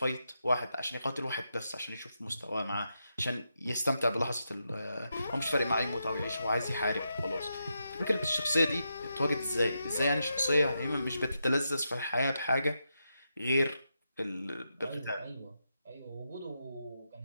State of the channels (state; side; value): inverted; both; correlation -0.85